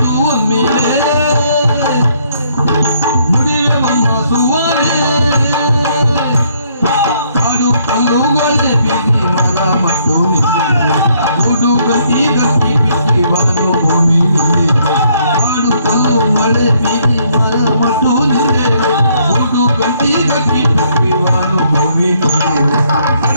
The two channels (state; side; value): inverted; both; correlation -0.68